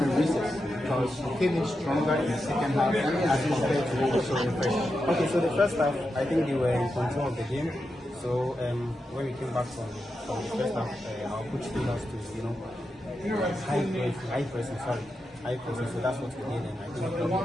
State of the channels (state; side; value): normal; both; correlation 0.88